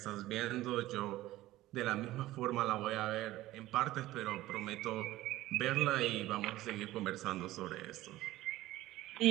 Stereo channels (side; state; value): left; quieter; 16.3 dB